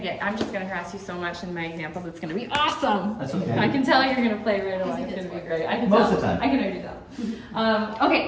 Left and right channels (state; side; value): identical; both; correlation 1.00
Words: just gonna harass you so much in my examples. It's gonna be awesome. That's okay. I can tell you're gonna play right away. It's gonna be great. I can Most tell. of the time. I can already tell.